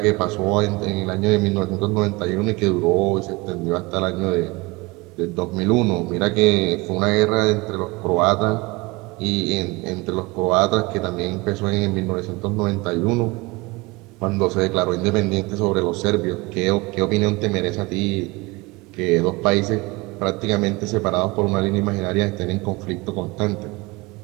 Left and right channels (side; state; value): left; quieter; 24.0 dB